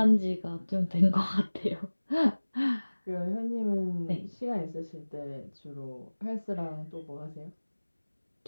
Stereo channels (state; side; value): inverted; both; correlation -1.00